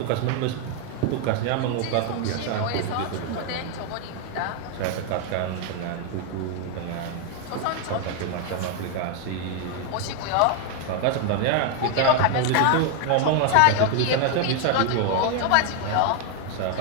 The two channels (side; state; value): both; different; correlation 0.01